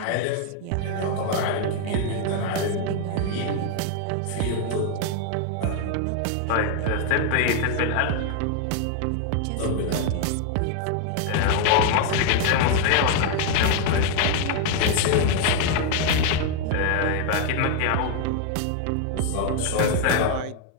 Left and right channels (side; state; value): both; different; correlation 0.01